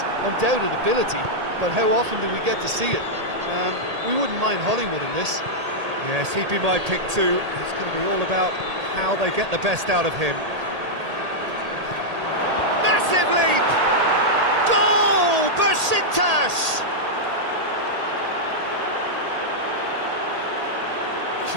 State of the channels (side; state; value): left; late; 1.8 ms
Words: undoubted ability, but how often do we get to see it? We wouldn't mind Hollywood in this. Yes, he'd be my pick too. It's going to be all about how they get the best out of him. Massive leap! Goal! Besiktas!